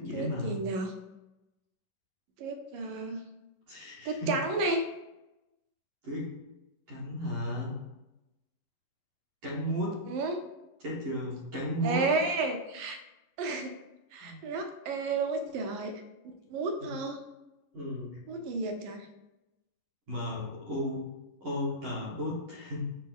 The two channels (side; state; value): left; late; 11 ms